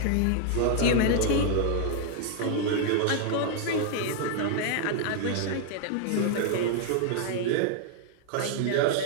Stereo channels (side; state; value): both; different; correlation 0.00